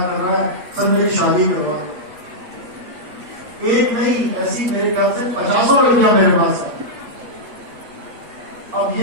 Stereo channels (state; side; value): late; left; 8.6 ms